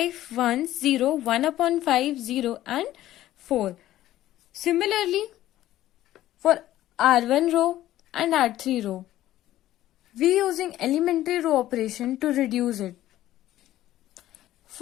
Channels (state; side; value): quieter; right; 14.1 dB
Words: 1, 0, 1 upon 5, 0 and 4. Similarly, for R1 row and R3 row, we using elementary row operation to reduce it.